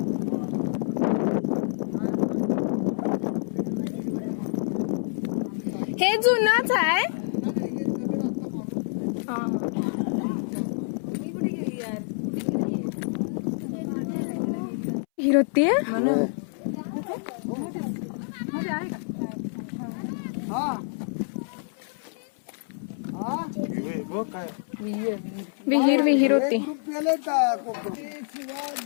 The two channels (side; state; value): right; silent; 60 dB below the other